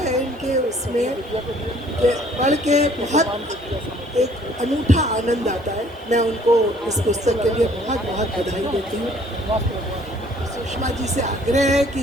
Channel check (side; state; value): both; normal; correlation 0.58